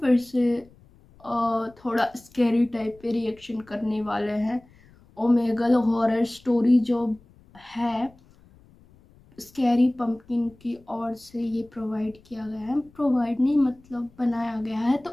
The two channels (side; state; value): left; noise; rumble, 28 dB below the sound